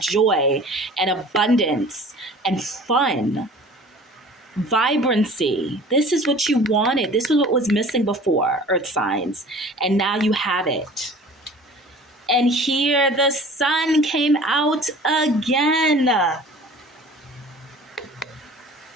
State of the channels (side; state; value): both; normal; correlation 0.45